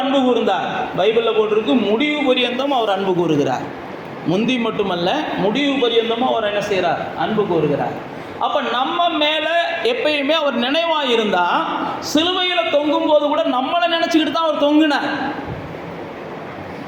அன்பு கூர்ந்தார். பைபிளில் போட்டிருக்கு, முடிவு பரியந்தம் அவர் அன்பு கூறுகிறார். முந்தி மட்டுமல்ல, முடிவு பரியந்தமும் அவர் என்ன செய்கிறார், அன்பு கூறுகிறார். அப்போ நம்ம மேலே எப்பயுமே அவர் நினைவாக இருந்தால், சிலுவையில் தொங்கும் போது கூட நம்மளை நினச்சிக்கிட்டு தான் அவர் தொங்குனார்.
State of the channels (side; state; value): both; identical; correlation 1.00